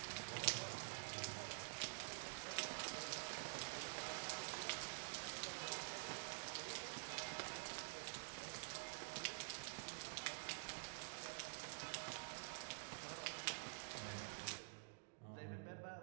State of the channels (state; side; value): silent; left; digital silence